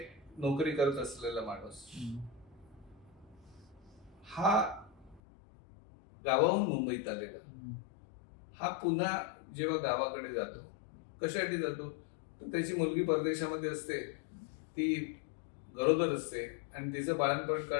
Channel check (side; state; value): right; drops out; at 5.2 s